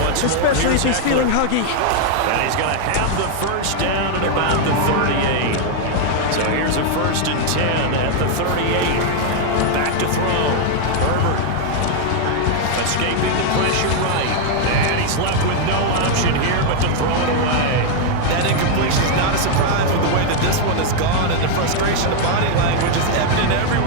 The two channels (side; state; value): both; different; correlation 0.00